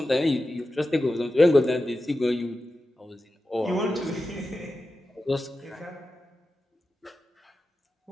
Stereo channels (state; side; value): normal; both; correlation 0.92